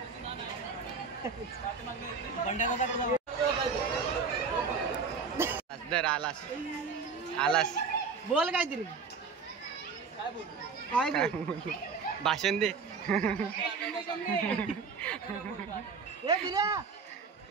दर आलास आलास बोल काहीतरी. काय भाषण दे.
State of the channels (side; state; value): left; quieter; 5.2 dB